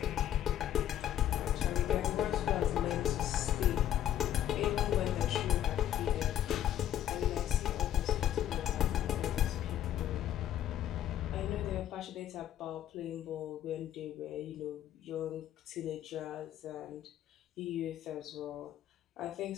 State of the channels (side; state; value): right; quieter; 11.3 dB